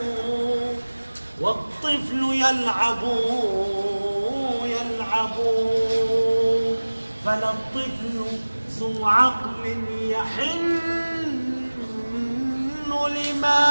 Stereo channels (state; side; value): inverted; both; correlation -1.00